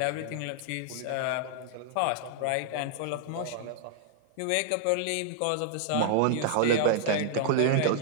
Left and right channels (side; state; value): both; different; correlation -0.01